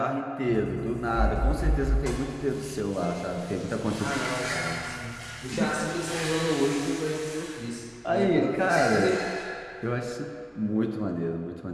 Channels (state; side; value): identical; both; correlation 1.00